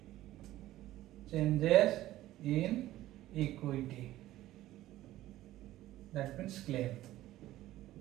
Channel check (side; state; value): left; quieter; 15.0 dB